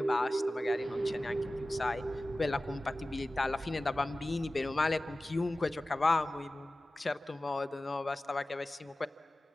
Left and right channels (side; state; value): both; normal; correlation 0.96